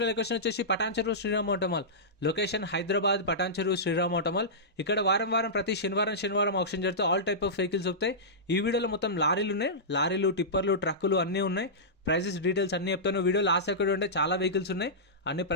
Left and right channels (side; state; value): both; normal; correlation -0.16